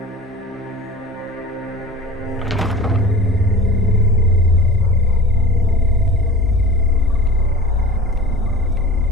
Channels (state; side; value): normal; both; correlation 0.40